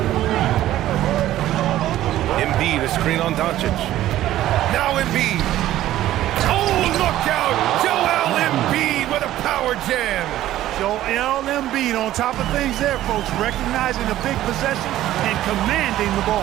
Embiid, a screen on Doncic. Now Embiid. Oh, look out! Joel Embiid with a power jam. Joel Embiid on top of things there, folks, recognizing the big possession and commanding the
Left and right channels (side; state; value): left; quieter; 13.8 dB